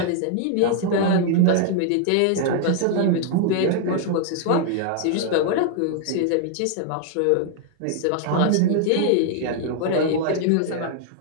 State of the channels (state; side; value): different; both; correlation 0.00